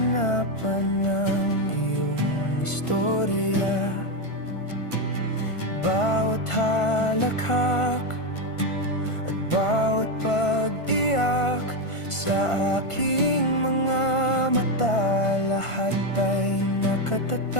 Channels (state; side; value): late; right; 1.5 ms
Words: ng iyong istorya. Bawat halakhak at bawat pag-iyak sa aking mga mata, lahat ay